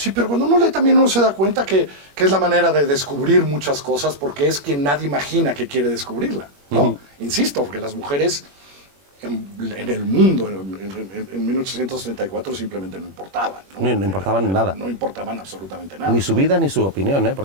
pero cuando uno lee también uno se da cuenta que es la manera de descubrir muchas cosas porque es quien nadie imagina que quiere descubrirla, ¿no? Insisto, porque las mujeres en el mundo en 1834 simplemente no importaban, ¿no? No importaban nada. No importaban absolutamente nada. Ni su vida ni su opinión, ¿eh?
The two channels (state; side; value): late; left; 21 ms